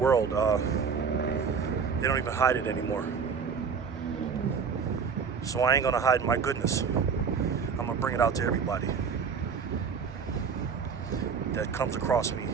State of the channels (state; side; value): quieter; left; 6.1 dB